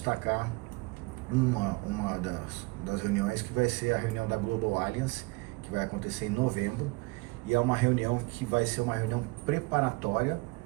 uma das reuniões, que vai ser a reunião da Global Alliance, que vai acontecer em novembro, e é uma reunião que vai ser uma reunião preparatória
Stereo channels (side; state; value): left; quieter; 25.1 dB